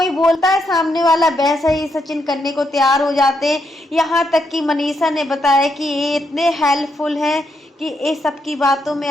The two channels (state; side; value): normal; both; correlation 0.79